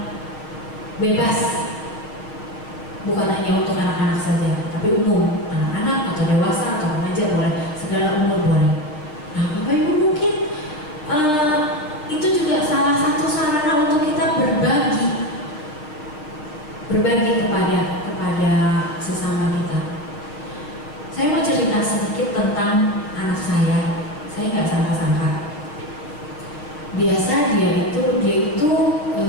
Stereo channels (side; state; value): right; late; 6.6 ms